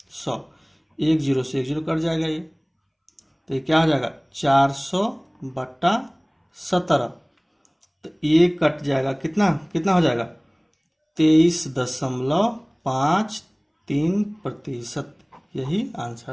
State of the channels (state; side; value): identical; both; correlation 1.00